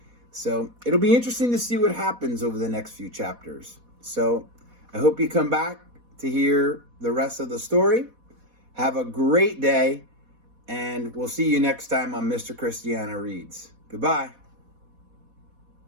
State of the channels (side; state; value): left; late; 4.1 ms